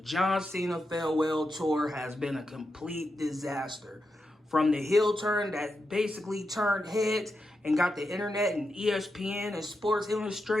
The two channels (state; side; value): normal; both; correlation 0.87